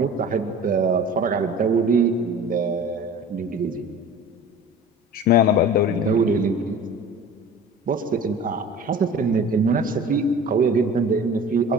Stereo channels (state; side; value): normal; both; correlation 0.40